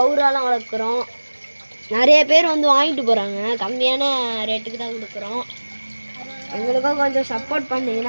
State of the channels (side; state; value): both; inverted; correlation -1.00